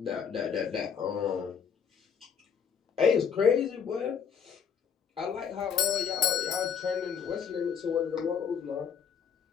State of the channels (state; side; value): quieter; right; 7.2 dB